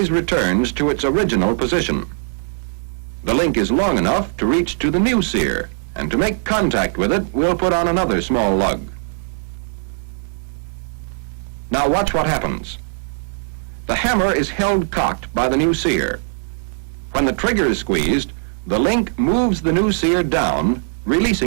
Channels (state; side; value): silent; left; 66 dB below the other